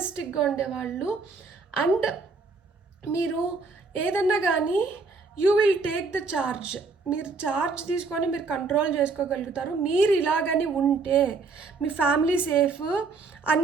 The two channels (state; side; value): quieter; left; 4.3 dB